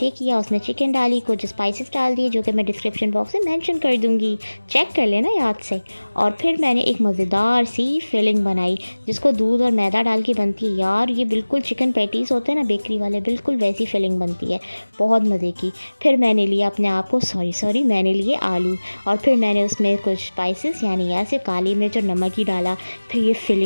किया, उसमें चिकन डाली, कुछ स्पाइसेस डाल दिए जो कि मैं डिस्क्रिप्शन बॉक्स में मेंशन कर दूंगी, चेक कर लेना याद से। और फिर मैंने एक मज़ेदार सी फिलिंग बनाई जिसको दूध और मैदा डाल के बनती है। यार ये बिल्कुल चिकन पैटीज़ होते हैं ना बेकरी वाले, बिल्कुल वैसी फिलिंग बनती है, बहुत मज़े की। फिर मैंने लिया अपने आप को, सॉरी मैंने लिए आलू, और फिर मैंने उसमें कुछ स्पाइसेस यानी ऐसे काली मिर्च और नमक ही डाला। फिर ये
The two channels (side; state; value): both; inverted; correlation -1.00